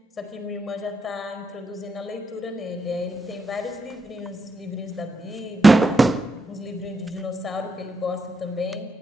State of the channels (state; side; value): normal; both; correlation 0.83